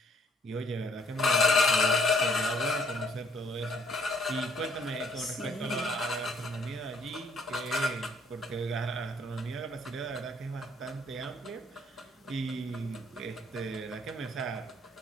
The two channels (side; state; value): both; normal; correlation 0.65